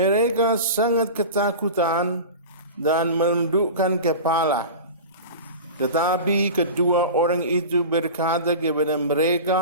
sangat ketakutan dan menundukkan kepala. Tetapi kedua orang itu berkata kepada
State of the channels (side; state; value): both; inverted; correlation -0.31